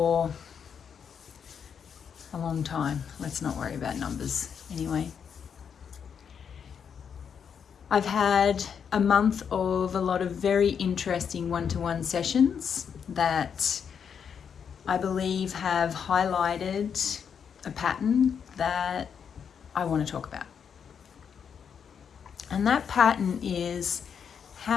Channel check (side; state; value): right; quieter; 7.2 dB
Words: a long time. Let's not worry about numbers anyway. I've had a month of a lot of very interesting one-to-one sessions that I believe have highlighted a pattern that I want to talk about. And that pattern is